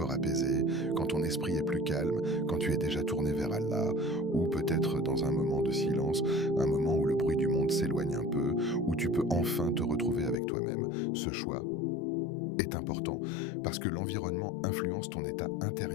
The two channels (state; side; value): drops out; right; at 10.4 s